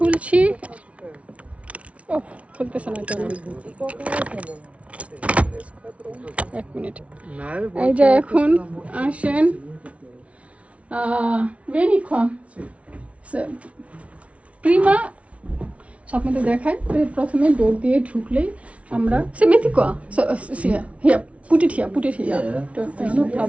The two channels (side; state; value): left; late; 0.064 ms